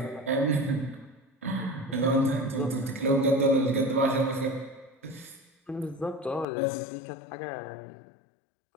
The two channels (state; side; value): drops out; right; at 6.5 s